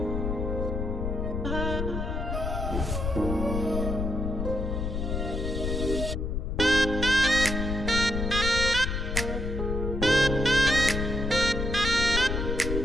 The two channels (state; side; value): noise; left; rumble, 2 dB below the sound